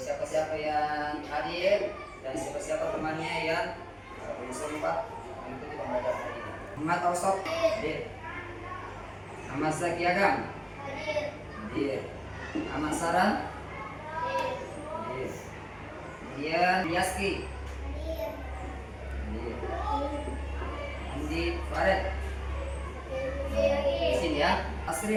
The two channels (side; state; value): both; identical; correlation 1.00